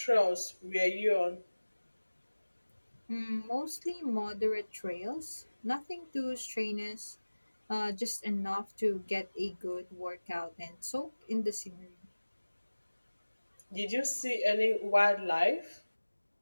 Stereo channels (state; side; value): inverted; both; correlation -1.00